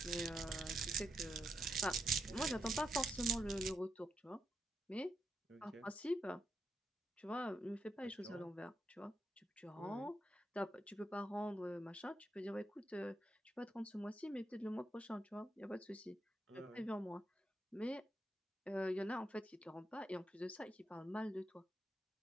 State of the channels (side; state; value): both; normal; correlation 0.83